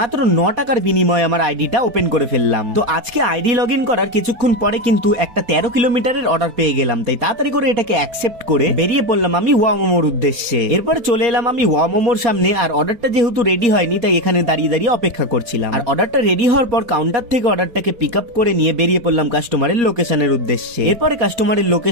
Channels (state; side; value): late; left; 4.6 ms